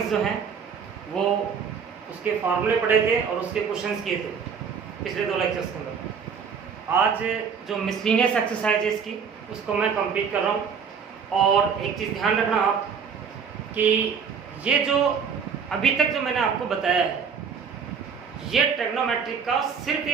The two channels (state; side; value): quieter; left; 6.5 dB